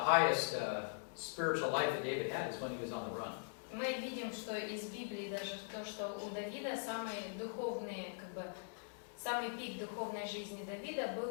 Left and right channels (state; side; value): silent; right; digital silence